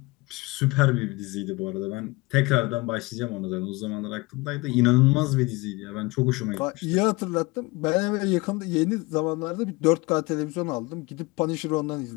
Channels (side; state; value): right; quieter; 23.6 dB